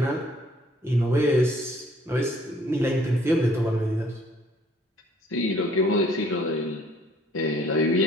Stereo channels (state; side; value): normal; both; correlation 0.60